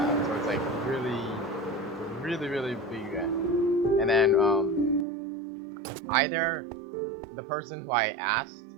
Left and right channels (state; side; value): drops out; left; at 5.1 s